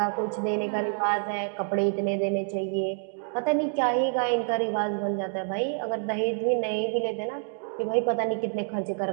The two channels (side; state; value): left; silent; 60 dB below the other